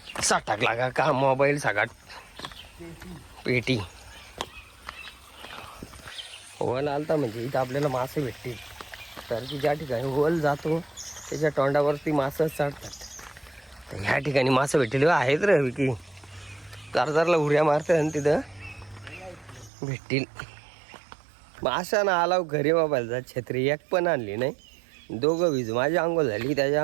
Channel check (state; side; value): drops out; left; at 19.7 s